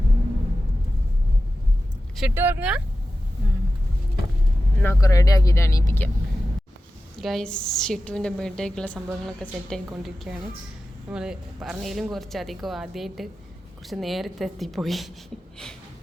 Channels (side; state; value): both; normal; correlation 0.93